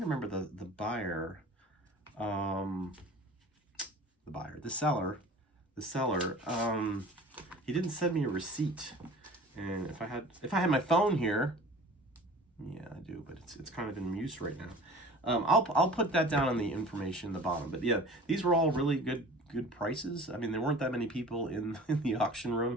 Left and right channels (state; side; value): normal; both; correlation 0.43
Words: to remember the buyer, the seller. He didn't send me a receipt, and if I had my phone here, yeah, I do, but it's kind of in use right now. I'll put that down on the information in the bottom. But yeah, these were all really good prices. I mean, there weren't that many people in the auction